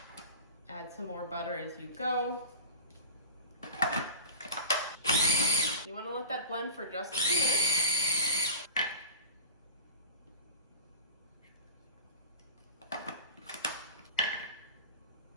Add some more butter as you go. You want to let that blend for just a few minutes.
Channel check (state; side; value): inverted; both; correlation -0.33